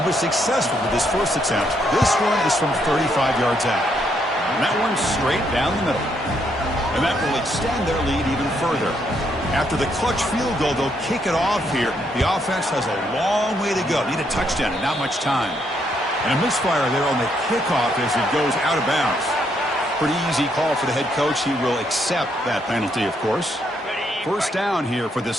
was successful with his first attempt. This one is from 35 yards out. And that one's straight down the middle. And that will extend their lead even further. After the clutch field goal, they'll kick it off here. The offense has a long way to go. Need a touchdown and not much time. And a misfire there on the kickoff as it goes out of bounds. pretty easy call for the head coach. He will accept that penalty, of course. First down here for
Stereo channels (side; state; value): both; normal; correlation 0.74